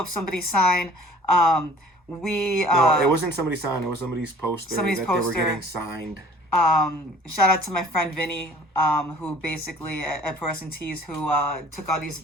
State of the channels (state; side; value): normal; both; correlation 0.50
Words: somebody's sign. No, it wasn't somebody's sign. It was somebody's poster they were getting signed. Shout out to my friend Vinny, who basically at Pro Wrestling Tees, who took all these